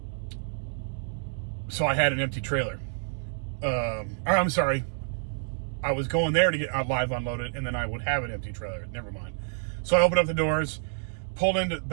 so I had an empty trailer. I'm sorry, I was going there to get live unloaded, and then I would have an empty trailer. Never mind. So I opened up the doors, pulled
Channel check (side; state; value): left; silent; 59 dB below the other